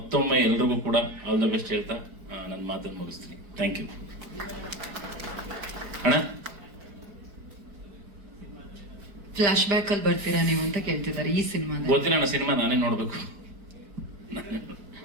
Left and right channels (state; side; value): late; left; 5.0 ms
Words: ಎಲ್ರಿಗೂ ಕೂಡ ಆಲ್ ದ ಬೆಸ್ಟ್ ಹೇಳ್ತಾ ನನ್ನ ಮಾತನ್ನು ಮುಗಿಸ್ತೀನಿ. Thank you. ಅಣ್ಣ, ಫ್ಲಾಶ್ ಬ್ಯಾಕ್ ಅಲ್ಲಿ ಬರ್ತೀರಾ ನೀವು ಅಂತ ಕೇಳ್ತಿದ್ದಾರೆ ಈ ಸಿನಿಮಾ. ಗೊತ್ತಿಲ್ಲ ಅಣ್ಣ, ಸಿನಿಮಾ ನಾನೇ ನೋಡ್ಬೇಕು.